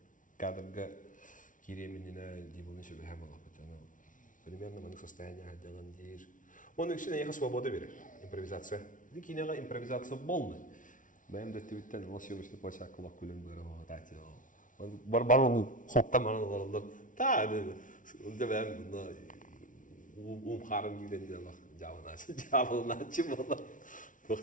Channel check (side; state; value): right; late; 0.38 ms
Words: Kadırga kireminine dibulun şöyle hem Allah patana. Примерно манık состояние hadjangan deyir. Onun için yağı свобода verir. Импровизация. Дикинега импровизация болмай. Benim de tweetten o съемочный площадка kulak kulen böyle hadi. Бар onu хоптан мана олар. Та dedi. Onda ben bunda karım giden diye bak javanaçı bola.